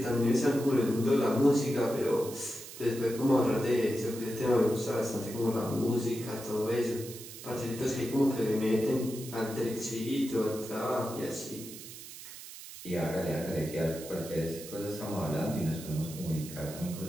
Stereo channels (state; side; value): noise; right; hiss, 13 dB below the sound